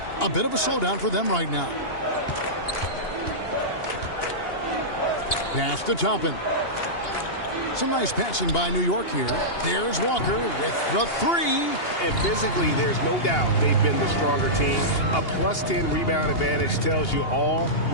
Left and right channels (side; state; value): right; late; 2.8 ms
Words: A bit of a slowdown for them right now. Pass to Toppin. Some nice passing by New York here. There's Walker with the 3. And physically, there's no doubt they've been the stronger team. A plus 10 rebound advantage tells you all